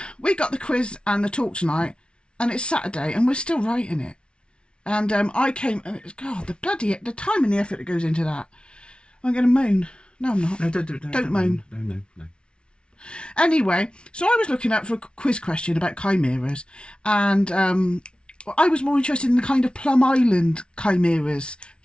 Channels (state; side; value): late; right; 0.057 ms